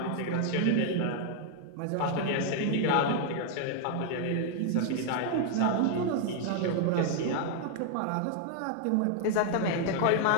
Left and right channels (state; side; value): different; both; correlation 0.00